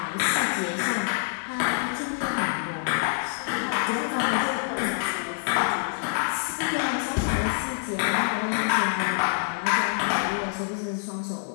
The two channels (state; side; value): silent; right; digital silence